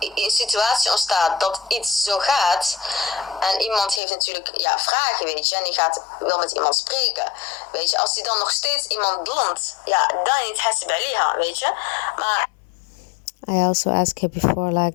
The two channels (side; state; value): right; drops out; at 4.0 s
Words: een situatie ontstaat dat iets zo gaat, en iemand heeft natuurlijk vragen, weet je, en die wil met iemand spreken, weet je, als die dan nog steeds iemand ظلmt, dan niet حاسب عليها, weet je. Maar I also asked her before, like,